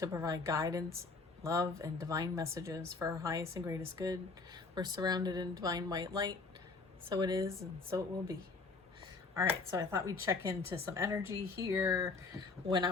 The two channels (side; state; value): right; quieter; 4.0 dB